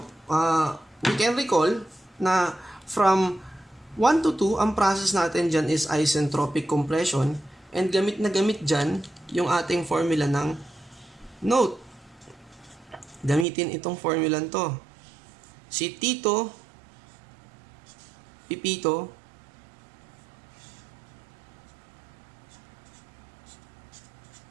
we can recall na from 1 to 2, ang process natin dyan is isentropic compression, and gamit na gamit dyan yung ating formula ng note. Gamitin itong formula to. Si Tito, Pipito,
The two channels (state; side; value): drops out; left; at 13.5 s